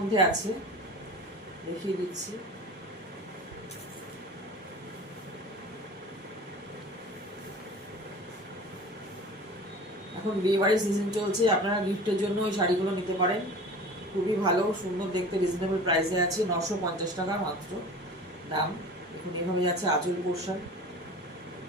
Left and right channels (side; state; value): both; normal; correlation 0.39